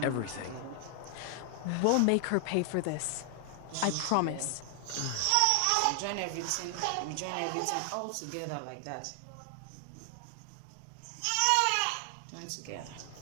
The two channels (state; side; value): different; both; correlation 0.00